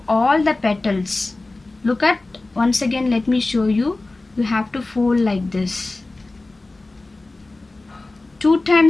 all the petals. Look at, once again let me show you. You have to fold like this. 2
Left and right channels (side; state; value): right; quieter; 3.1 dB